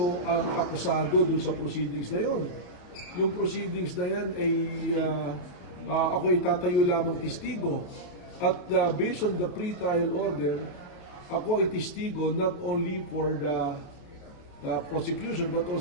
ang akusado dun sa proceedings na yon. Yung proceedings na yan ay ako itatayo lamang testigo. At based on the pre-trial order, ako ay testigo not only for the prosecution but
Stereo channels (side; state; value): right; late; 28 ms